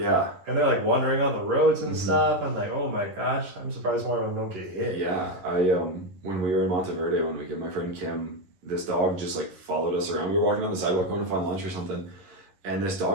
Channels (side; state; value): left; late; 11 ms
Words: and they're wandering on the roads and stuff. I'm like, oh my gosh, I'm surprised more of them don't get hit. Yeah, when we were in Monteverde one weekend, my friend Kim, this dog just followed us around. We were walking down the sidewalk going to find lunch or something. and this